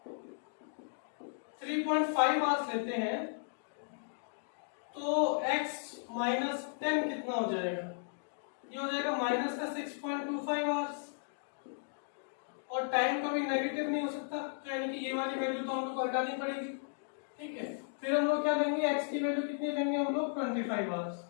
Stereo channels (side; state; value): right; silent; digital silence